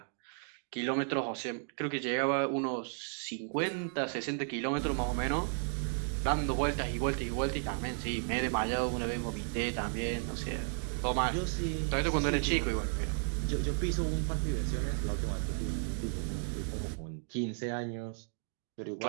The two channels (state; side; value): silent; left; 55 dB below the other